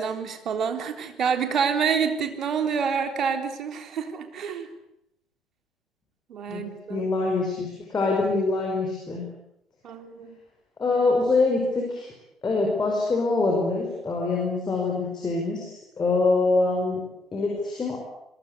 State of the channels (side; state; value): both; normal; correlation 0.69